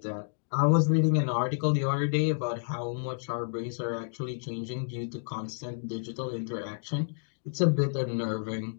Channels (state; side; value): silent; right; digital silence